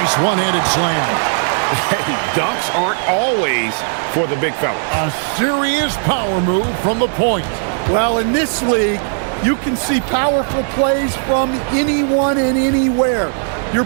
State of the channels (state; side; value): silent; left; 68 dB below the other